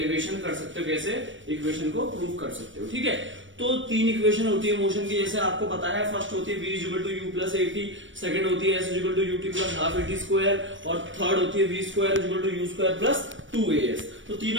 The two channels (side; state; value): left; late; 0.56 ms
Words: कर सकते हो, कैसे इक्वेशन को प्रूव कर सकते हो। ठीक है, तो तीन इक्वेशन होती है मोशन की, जैसे आपको पता है। फर्स्ट होती है v equal to u plus a t, second होती है s equal to u t plus half a t square, और थर्ड होती है v square equal to u square plus 2as। तो